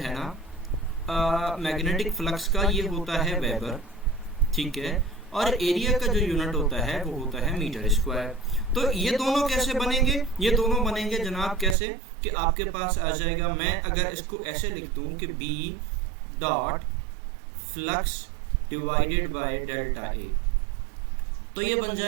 है ना मैग्नेटिक फ्लक्स का, ये होता है वेबर, ठीक है। और एरिया का जो यूनिट होता है वो होता है मीटर स्क्वायर। तो ये दोनों कैसे बनेंगे? ये दोनों बनेंगे जनाब कैसे कि आपके पास आ जाएगा, मैं अगर इसको ऐसे लिख दूं कि B dot flux divided by delta A, तो ये बन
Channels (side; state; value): left; drops out; at 11.8 s